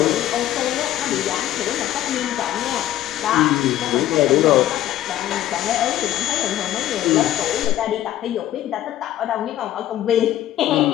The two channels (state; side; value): quieter; right; 13.0 dB